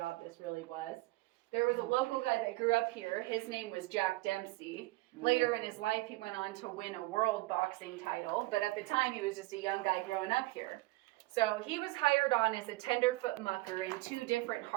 this really was, there was a local guy that grew up here. His name was Jack Dempsey. Later in his life, he went on to win a world boxing title, but at the time, he was just a young guy growing up here. So he was hired on as a tenderfoot mucker in 2 different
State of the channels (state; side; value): quieter; left; 20.9 dB